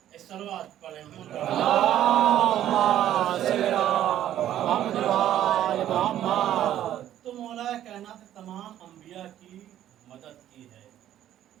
صلوات پڑھیں تو مولا کائنات تمام انبیاء کی مدد کی ہے۔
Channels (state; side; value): quieter; left; 11.8 dB